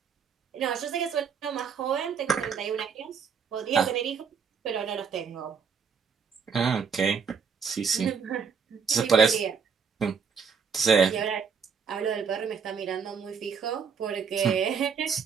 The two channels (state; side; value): quieter; left; 6.2 dB